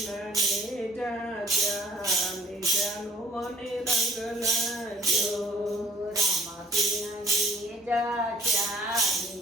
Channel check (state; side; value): normal; both; correlation 0.53